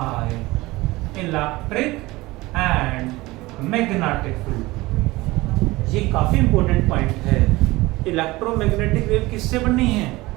electric and magnetic field. ये काफी इंपॉर्टेंट पॉइंट है। इलेक्ट्रोमैग्नेटिक वेव किससे बनी है?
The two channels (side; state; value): left; quieter; 20.3 dB